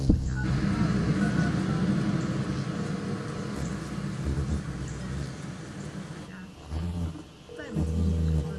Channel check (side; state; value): both; identical; correlation 1.00